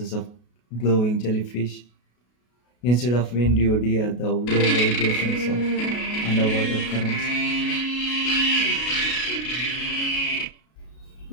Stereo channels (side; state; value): right; late; 33 ms